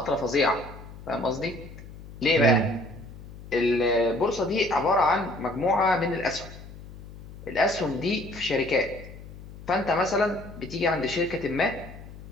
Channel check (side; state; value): left; noise; hum, 16 dB below the sound